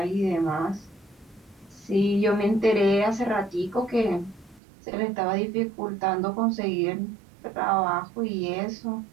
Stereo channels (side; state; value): left; drops out; at 4.6 s